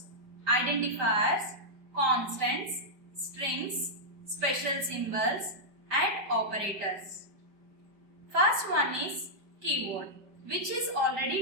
identifiers, constants, strings, special symbols and operators. First one is keyword, which is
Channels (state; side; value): late; left; 5.1 ms